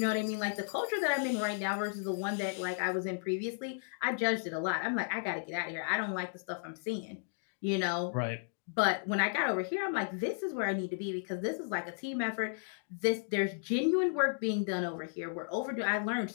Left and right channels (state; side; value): silent; right; digital silence